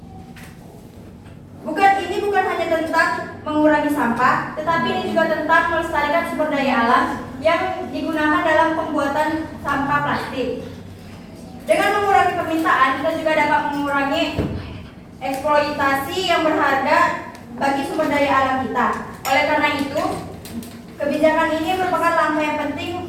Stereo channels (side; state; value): both; identical; correlation 1.00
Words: Ini bukan hanya tentang mengurangi sampah, tetapi ini juga tentang melestarikan sumber daya alam yang digunakan dalam pembuatan sampah plastik. Dengan mengurangi permintaan, kita juga dapat mengurangi eksploitasi yang berharga bagi sumber daya alam kita. Oleh karena itu, kebijakan ini merupakan langkah yang